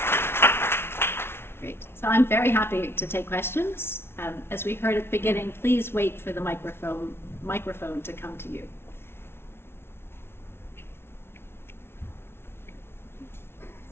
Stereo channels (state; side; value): late; right; 0.12 ms